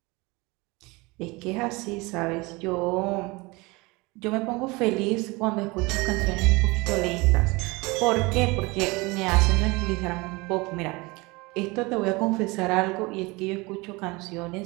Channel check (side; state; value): left; quieter; 24.5 dB